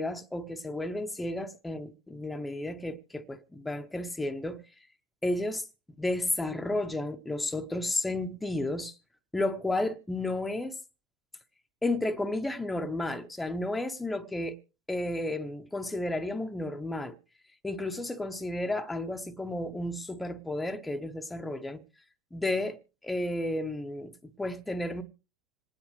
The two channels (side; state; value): both; normal; correlation 0.85